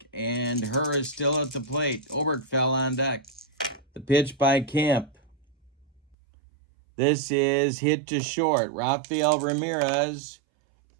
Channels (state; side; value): drops out; left; at 6.2 s